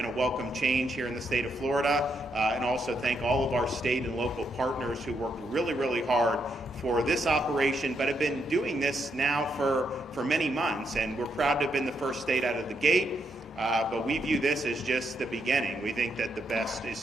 a welcome change here in the state of Florida, and also thank all of our state and local partners who worked really, really hard for this operation, but have been doing this now for many months, and we're proud to have been the first state out of the gate. But we view this as just the beginning. We think that the best is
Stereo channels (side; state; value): both; normal; correlation 0.79